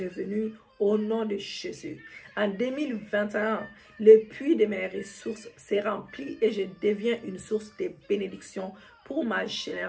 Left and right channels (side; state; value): both; identical; correlation 1.00